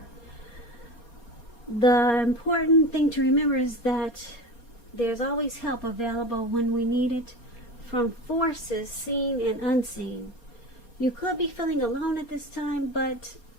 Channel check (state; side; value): late; right; 4.3 ms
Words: The important thing to remember is that there's always help available when we need it, from forces seen and unseen. You could be feeling alone at this time, but